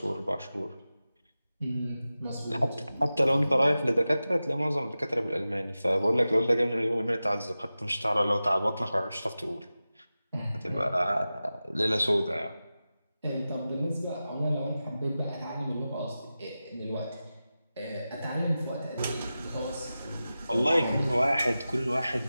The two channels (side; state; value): both; inverted; correlation -0.94